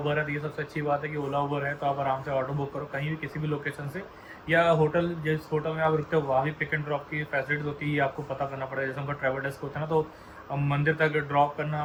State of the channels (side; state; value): both; identical; correlation 1.00